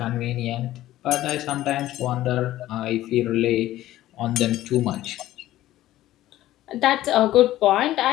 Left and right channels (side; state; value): right; quieter; 14.7 dB